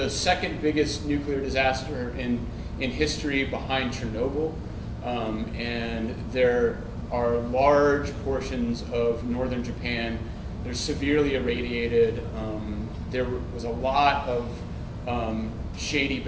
second biggest nuclear disaster in history behind Chernobyl, and there are large portions of northern Japan. They're severely irradiated. There was a lot of shady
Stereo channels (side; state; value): both; identical; correlation 1.00